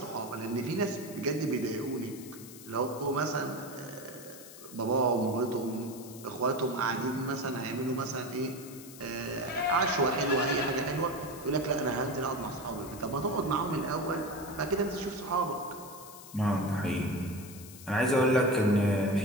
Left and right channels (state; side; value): noise; left; hiss, 16 dB below the sound